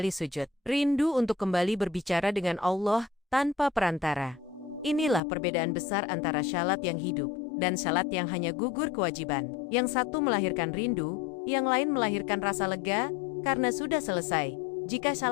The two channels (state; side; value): drops out; right; at 5.2 s